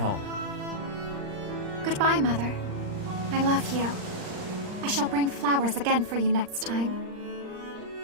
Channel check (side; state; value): left; late; 39 ms